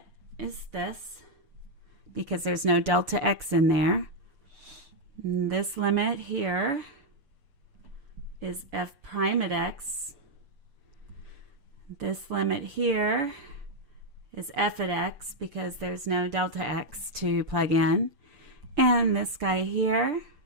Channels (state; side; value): late; left; 6.9 ms